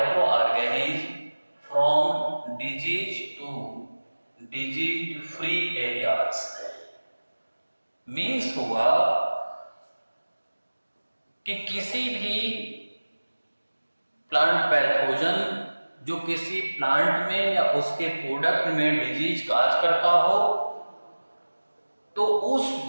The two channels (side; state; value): both; inverted; correlation -1.00